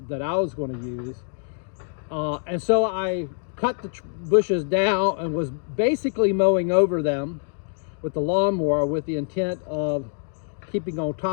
that I was going to use. And so I cut the bushes down and was basically mowing over them with the lawnmower with the intent of keeping on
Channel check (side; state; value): right; silent; 59 dB below the other